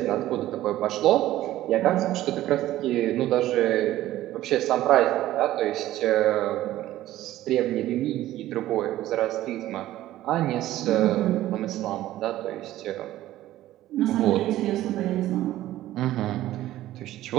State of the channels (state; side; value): quieter; left; 14.5 dB